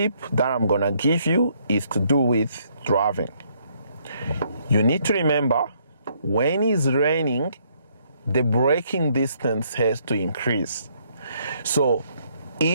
that I'm gonna give you is to do with driving. You need to remember, when it's raining, the braking distance has to increase. So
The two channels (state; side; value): inverted; both; correlation -0.69